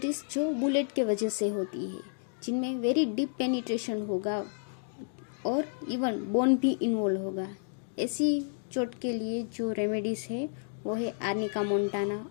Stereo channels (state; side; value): silent; right; digital silence